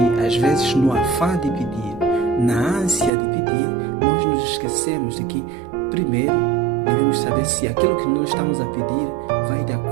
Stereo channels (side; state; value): left; drops out; at 3.1 s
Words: às vezes no afã de pedir, na ânsia de pedir, nós nos esquecemos de que primeiro devemos saber se aquilo que nós estamos a pedir vai de